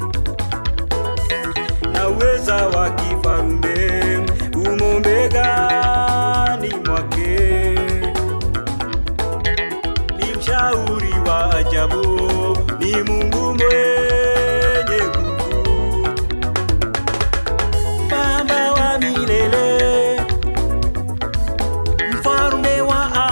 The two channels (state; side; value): inverted; both; correlation -1.00